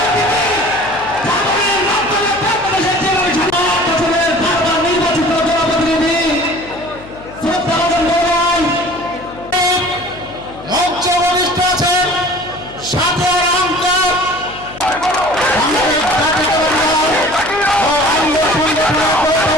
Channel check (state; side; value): noise; left; hum, 18 dB below the sound